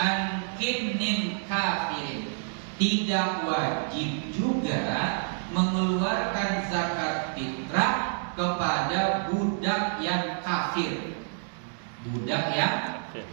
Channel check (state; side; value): silent; left; digital silence